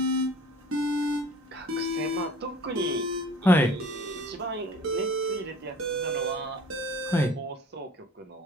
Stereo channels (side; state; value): both; normal; correlation 0.48